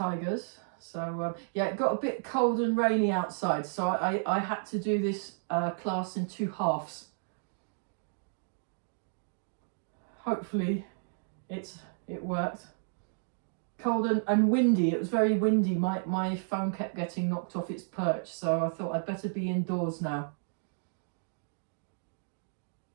So yeah, it got a bit cold and rainy outside, so I had to do this class in 2 halves. Hopefully it worked. Cold and windy. It was very windy. My phone kept getting knocked off its perch, so I thought I'd better be indoors now.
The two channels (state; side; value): silent; left; digital silence